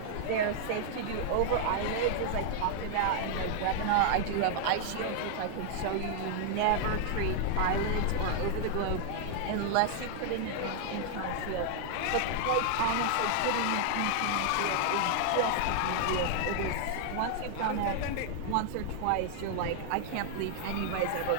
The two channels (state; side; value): different; both; correlation 0.00